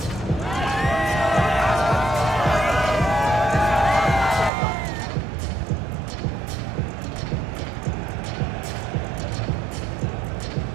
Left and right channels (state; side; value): drops out; left; at 4.5 s